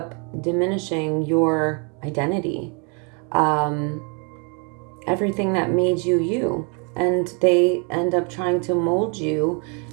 diminishing your identity, everything that made you you. And they end up trying to mold you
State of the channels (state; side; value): quieter; left; 35.3 dB